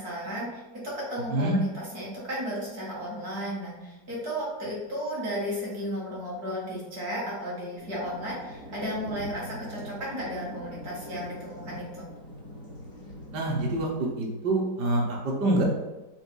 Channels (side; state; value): left; late; 4.5 ms